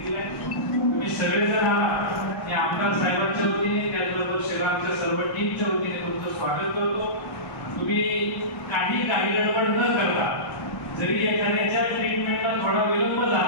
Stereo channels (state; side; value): late; right; 1.1 ms